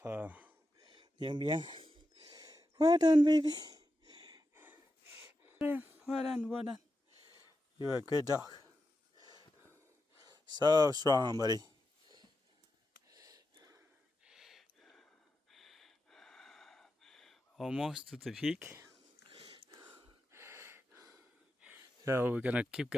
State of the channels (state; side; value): normal; both; correlation 0.89